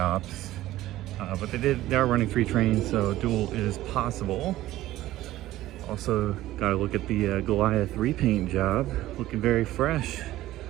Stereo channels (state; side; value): quieter; left; 15.3 dB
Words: But they are running 3 trains, so duel is possible. Also, gotta look at the Goliath repaint job, looking very fresh.